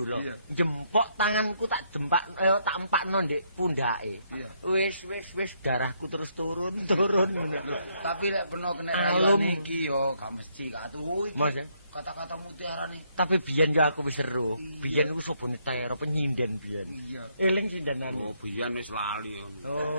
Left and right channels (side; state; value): both; inverted; correlation -0.73